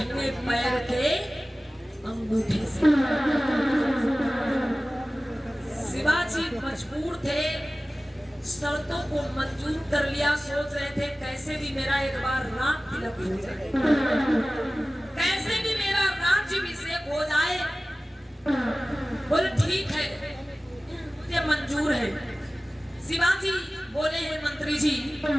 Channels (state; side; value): normal; both; correlation 0.97